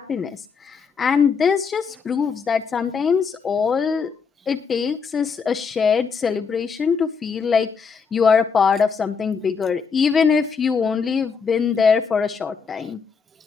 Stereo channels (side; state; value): right; quieter; 5.7 dB